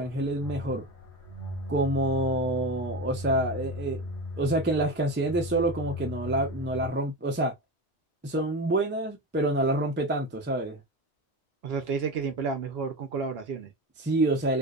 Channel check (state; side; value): normal; both; correlation 0.23